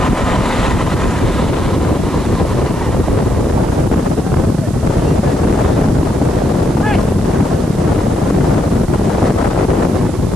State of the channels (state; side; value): noise; right; hiss, 20 dB below the sound